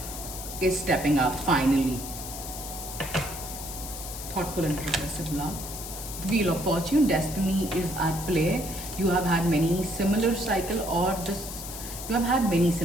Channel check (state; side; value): noise; left; hiss, 9 dB below the sound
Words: is stepping up finally. Thoughtful and progressive love. The Wheel of Fortune, destiny is at play. You have had many similar cycle, or this you have had many